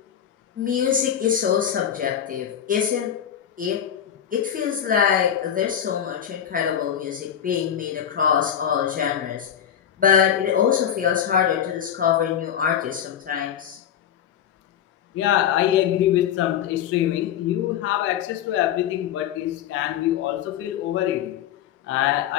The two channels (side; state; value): right; quieter; 9.4 dB